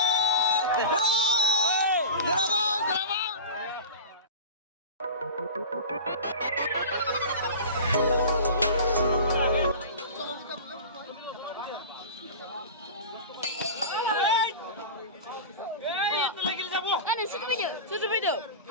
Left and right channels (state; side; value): inverted; both; correlation -0.32